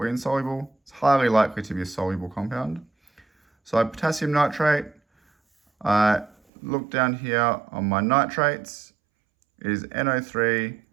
insoluble. It's highly likely to be a soluble compound. So potassium nitrate, I look down here on my nitrates, it is NO3.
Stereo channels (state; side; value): drops out; left; at 6.4 s